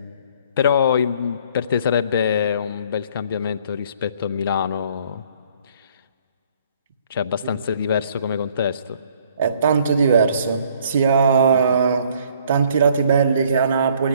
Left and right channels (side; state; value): both; inverted; correlation -0.60